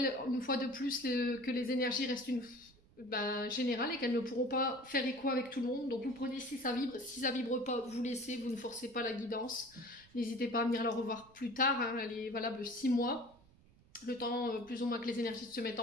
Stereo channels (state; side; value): noise; right; rumble, 27 dB below the sound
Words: une fois de plus que les énergies restent générales et qu'elles ne pourront pas faire écho avec tout le monde. Donc vous prenez si ça vibre, si ça vibre pas, vous laissez, vous ne forcez pas la guidance. N'hésitez pas à venir la revoir plus tard, hein, elle est valable 6 mois. Le temps plus ou moins que les énergies se mettent